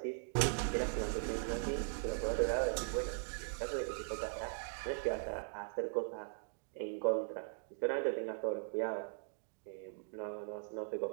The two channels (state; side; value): silent; left; digital silence